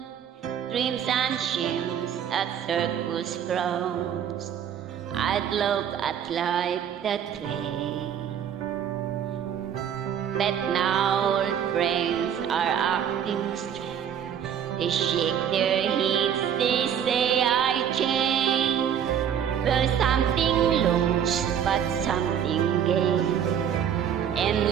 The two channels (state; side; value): quieter; left; 8.8 dB